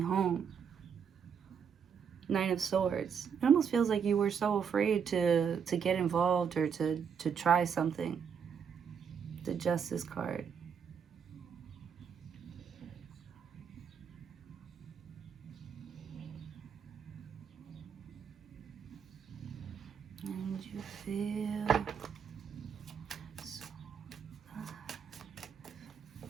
Nine of Swords. It almost feels like you were so afraid to get involved or to try something. The Justice card. And you feel so alive.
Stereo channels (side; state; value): left; quieter; 7.1 dB